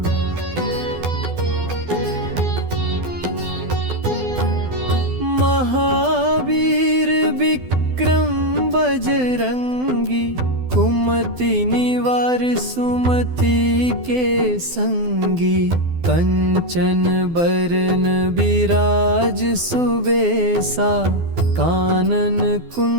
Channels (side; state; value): left; late; 12 ms